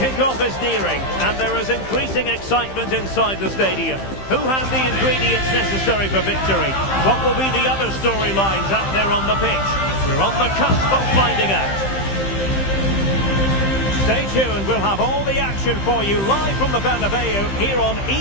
Kickoff is nearing, and there is increasing excitement inside the stadium. Who has the ingredients necessary for victory? What will be the other storylines out there on the pitch? We're on the cusp of finding out. Stay tuned, we'll have all the action for you live from the Bernabeu here on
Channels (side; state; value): right; late; 15 ms